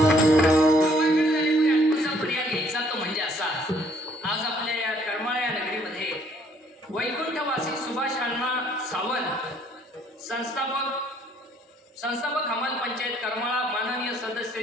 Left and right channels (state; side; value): normal; both; correlation 0.63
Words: पर्याय घ्यायचा तो म्हणजे असा. आज आपल्या या करमाळा नगरीमध्ये वैकुंठवासी सुभाष अण्णा सावंत संस्थापक हमाल पंचायत करमाळा, माननीय